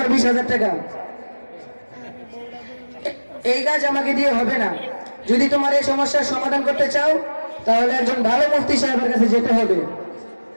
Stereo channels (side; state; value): both; inverted; correlation -1.00